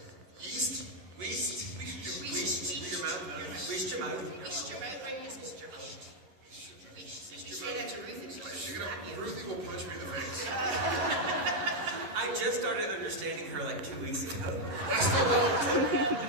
Yeast. Weast. Wish your mouth. Weast your mouth. Wish your mouth. Right, just wish your mouth. Wish. You say that to Ruth, and she'll Ruthie will punch me in the face. I I just started understanding her like 2 weeks ago. I still don't.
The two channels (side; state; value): left; late; 11 ms